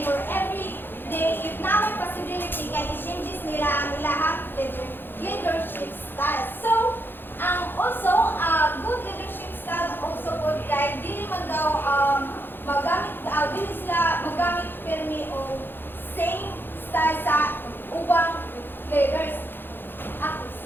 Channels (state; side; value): late; right; 0.10 ms